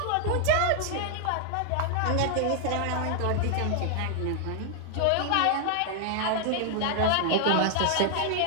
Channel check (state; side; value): different; both; correlation 0.00